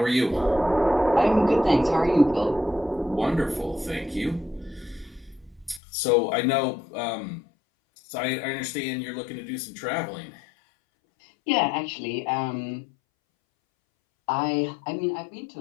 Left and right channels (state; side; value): drops out; right; at 5.8 s